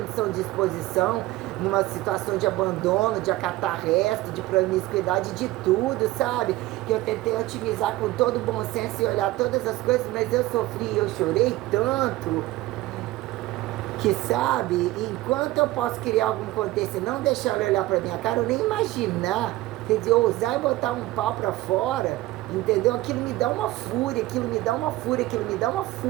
de exposição, numa situação de abandono, de acatar resto, de promiscuidade, de tudo, sabe? Que eu tentei otimizar com todo o bom senso e olhar todas as coisas, mas eu sofri, eu chorei tanto que, sabe, enquanto eu posso criar algum contexto e não deixar ele olhar pra minha cara, eu nem imaginar, quer dizer, ousar e botar um pau pra fora, entendeu? Aquilo me dá uma fúria, aquilo me dá uma fúria, aquilo me dá uma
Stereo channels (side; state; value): left; quieter; 17.7 dB